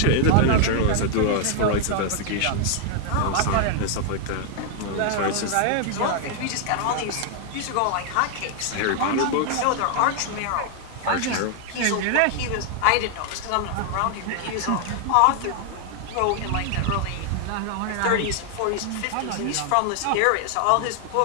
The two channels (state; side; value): different; both; correlation 0.00